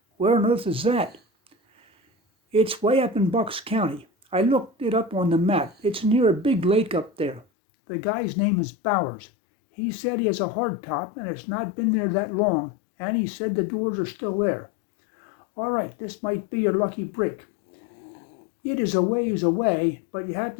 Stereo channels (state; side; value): drops out; right; at 7.5 s